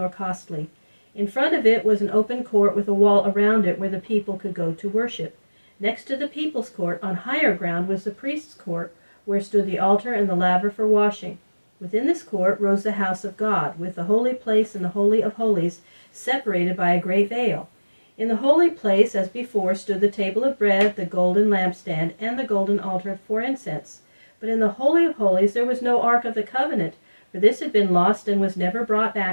costly. In front of it was an open court with a wall around it where the people could go to worship. Next to the people's court, on higher ground, was the priest's court, where stood the altar and the laver for washing. Within this court rose the house of God, with the holy place and the holy of holies, separated by a great veil. In the holy place, as before, stood the table of bread, the golden lampstand, and the golden altar for incense. But in the holy of holies there was no ark of the covenant, for this had been lost and was never brought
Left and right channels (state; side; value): inverted; both; correlation -1.00